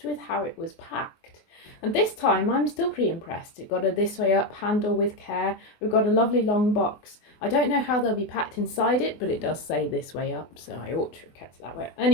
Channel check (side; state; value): right; late; 24 ms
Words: with how it was packed. And this time I'm still pretty impressed. It got a this way up handle with care. We've got a lovely long box. I don't know how they'll be packed inside it, but it does say this way up, so I ought to have kept it that way.